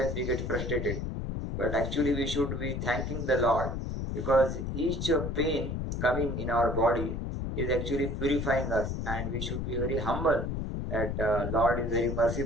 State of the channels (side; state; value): left; noise; rumble, 3 dB below the sound